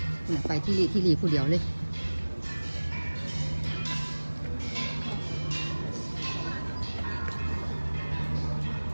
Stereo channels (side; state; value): both; inverted; correlation -1.00